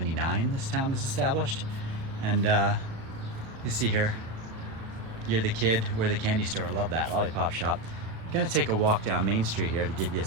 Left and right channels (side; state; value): left; late; 36 ms